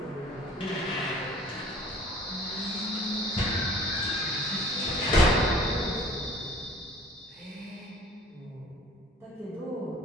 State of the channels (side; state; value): both; normal; correlation 0.50